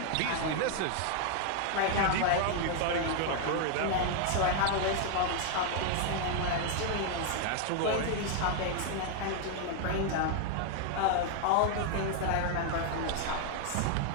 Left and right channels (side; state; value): both; different; correlation 0.00